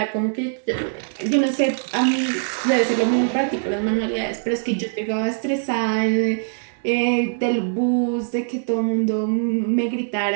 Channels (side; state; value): left; silent; digital silence